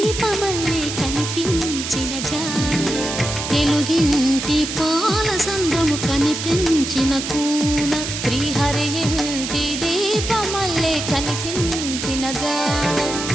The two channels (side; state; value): right; noise; hiss, 5 dB below the sound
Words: కనిపించిన జాన తెలుగింటి పాల సంద్రము కనిపించిన కూన శ్రీహరి ఇంటి దీపమల్లే కనిపించిన జానం